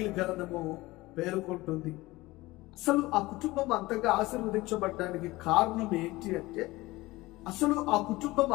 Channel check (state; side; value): quieter; right; 19.9 dB